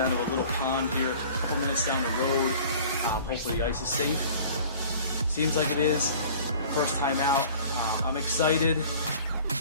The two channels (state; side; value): inverted; both; correlation -0.46